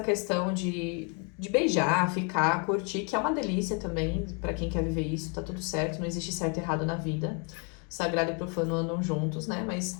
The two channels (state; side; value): quieter; right; 35.9 dB